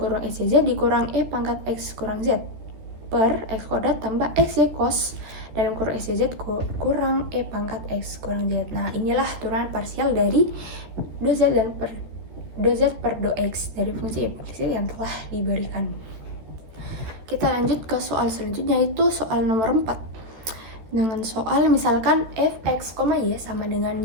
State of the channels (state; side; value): late; left; 14 ms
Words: kurung xyz dikurang e pangkat x kurang z per x kuadrat tambah xy cos dalam kurung xyz kurang e pangkat x kurang z. Nah, inilah turunan parsial dari do z per do x dari fungsi implisit yang telah diberikan. Kita lanjut ke soal selanjutnya, yaitu soal nomor 4. Dengan soal misalkan fx, y sama dengan